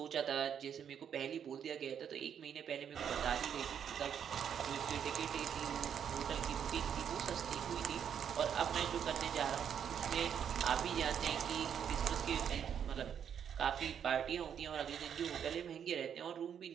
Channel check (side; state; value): left; quieter; 8.4 dB